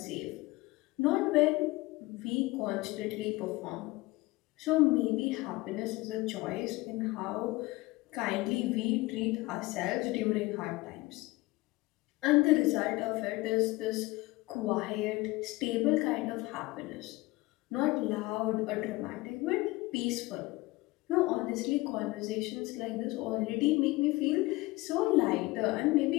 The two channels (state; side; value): quieter; right; 20.9 dB